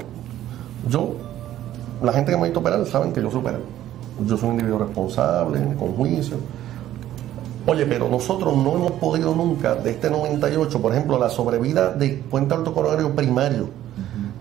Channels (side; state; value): left; quieter; 12.7 dB